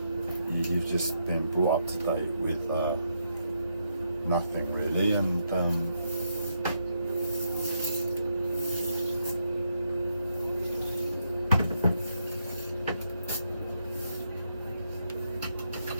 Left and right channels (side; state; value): both; inverted; correlation -0.79